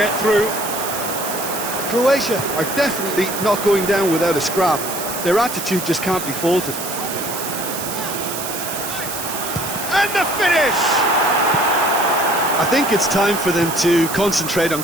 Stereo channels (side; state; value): right; noise; hiss, 7 dB below the sound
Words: through. Croatia are definitely not going down without a scrap. Their attitude just can't be faulted. And the finish! I think it's time for them to concentrate on